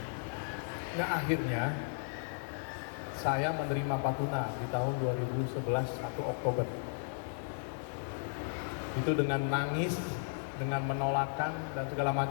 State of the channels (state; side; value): silent; right; digital silence